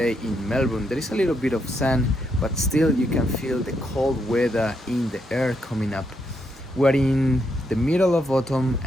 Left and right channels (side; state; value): both; normal; correlation 0.78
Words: in Melbourne. There is a little bit of sun, but still you can feel the cold weather in the air coming up. We're in the middle of autumn